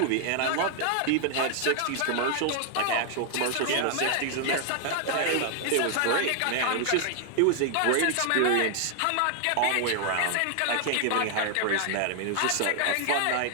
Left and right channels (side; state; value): both; different; correlation 0.00